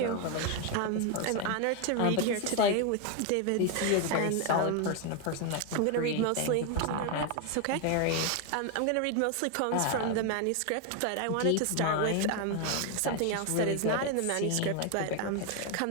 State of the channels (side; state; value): both; different; correlation 0.01